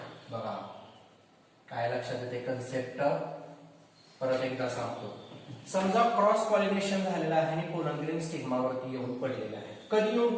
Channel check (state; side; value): identical; both; correlation 1.00